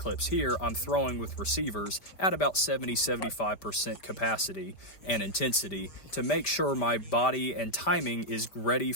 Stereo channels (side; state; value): right; late; 5.1 ms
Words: here, I'm throwing with receivers at about 70-75% capacity and intensity to make sure my body and timing is ready